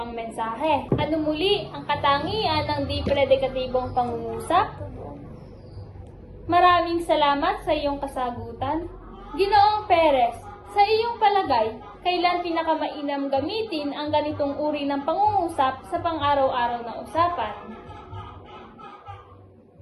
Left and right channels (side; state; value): both; identical; correlation 1.00